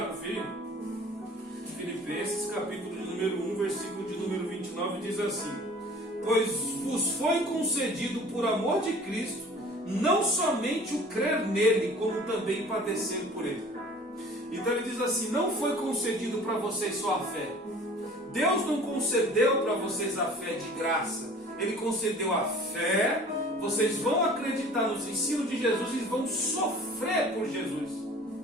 conferir? Filipenses, capítulo de número 1, versículo de número 29, diz assim, pois vos foi concedido por amor de Cristo, não somente o crer nele, como também padecer por ele. Então ele diz assim, não foi concedido para vocês só a fé. Deus não concedeu para vocês a fé de graça. Ele concedeu a fé, vocês vão acreditar nos ensinos de Jesus e vão sofrer por Jesus.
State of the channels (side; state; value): both; normal; correlation 0.47